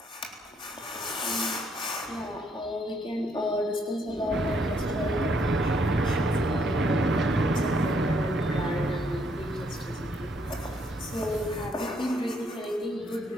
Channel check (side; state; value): both; normal; correlation 0.71